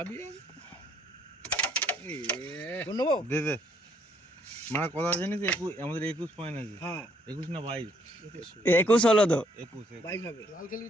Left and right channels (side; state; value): both; normal; correlation 0.68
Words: বোর্ড নেবো দে দে মানে কথা জানিস আমাদের 21 পয়েন্ট আছে হ্যাঁ 21 না 22 21 হলো তো। 21 বাইশ হবে লাল